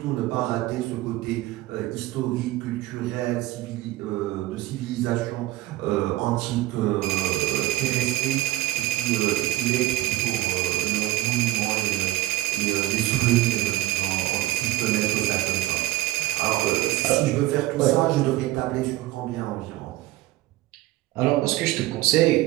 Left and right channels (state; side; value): quieter; left; 16.6 dB